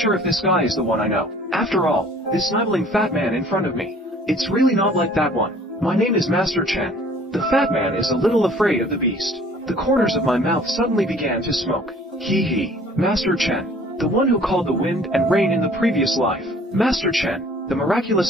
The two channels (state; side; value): normal; both; correlation 0.53